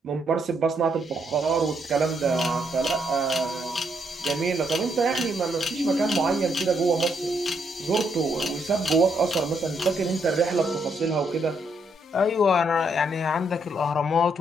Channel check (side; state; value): both; normal; correlation 0.75